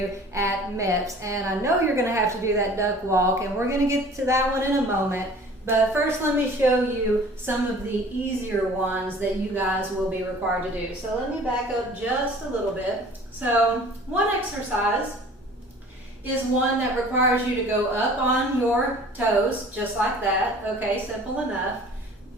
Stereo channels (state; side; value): normal; both; correlation 0.47